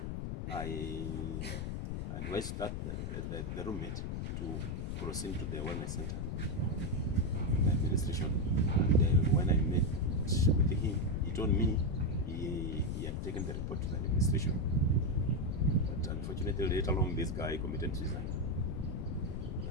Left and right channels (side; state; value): left; noise; rumble, 3 dB below the sound